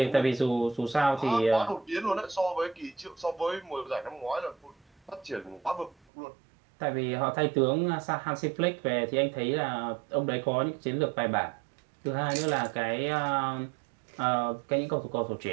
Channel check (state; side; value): drops out; left; at 6.0 s